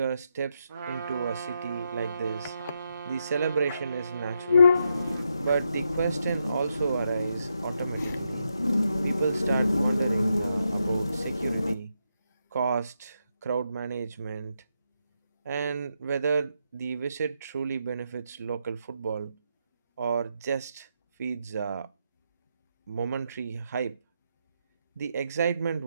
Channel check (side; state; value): both; inverted; correlation -0.82